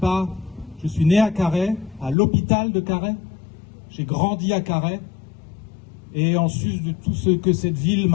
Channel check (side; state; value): right; drops out; at 2.1 s